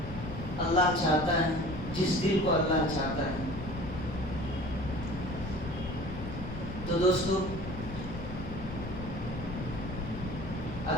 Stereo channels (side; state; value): left; noise; rumble, 8 dB below the sound